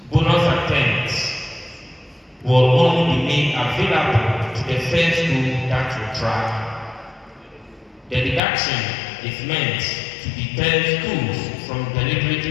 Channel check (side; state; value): right; drops out; at 8.4 s